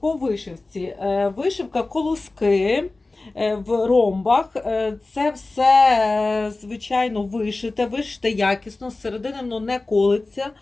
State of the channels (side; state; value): right; quieter; 3.2 dB